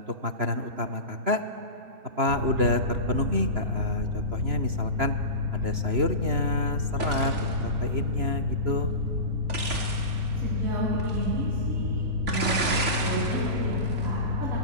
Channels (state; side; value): late; left; 3.0 ms